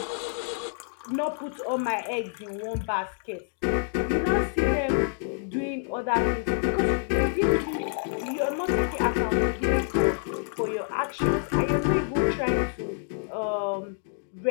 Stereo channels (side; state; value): right; silent; digital silence